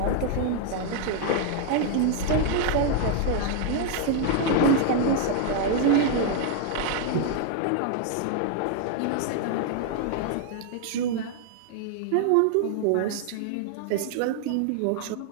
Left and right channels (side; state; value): both; different; correlation 0.00